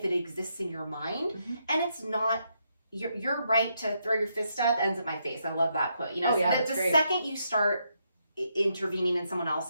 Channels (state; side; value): inverted; both; correlation -0.78